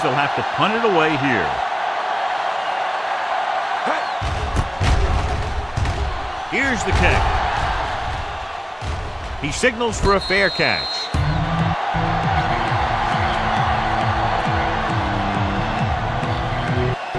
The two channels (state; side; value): identical; both; correlation 1.00